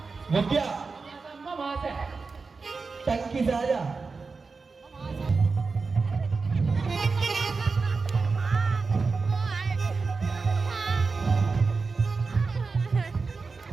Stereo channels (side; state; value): left; quieter; 4.4 dB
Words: वो क्या? वहां से टंकी से आजा।